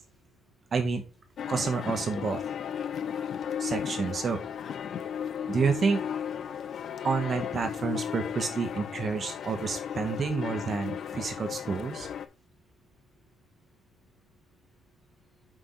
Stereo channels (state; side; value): normal; both; correlation 0.77